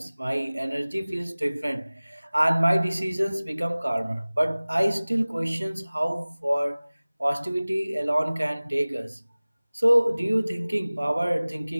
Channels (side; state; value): both; inverted; correlation -0.99